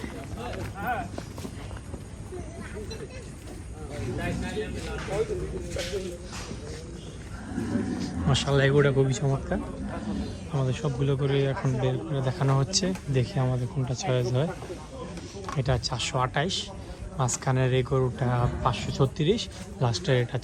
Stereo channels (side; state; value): both; identical; correlation 1.00